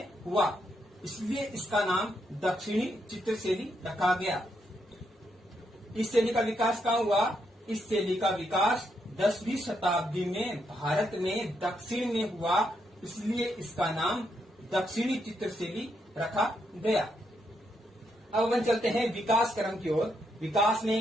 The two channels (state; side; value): normal; both; correlation 0.79